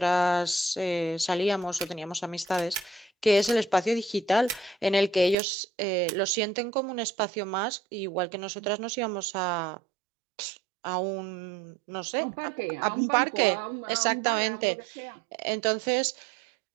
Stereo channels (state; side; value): drops out; left; at 5.4 s